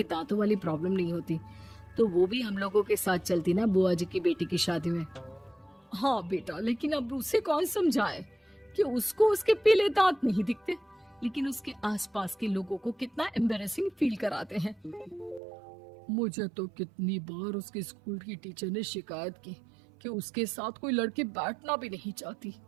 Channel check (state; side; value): drops out; left; at 15.4 s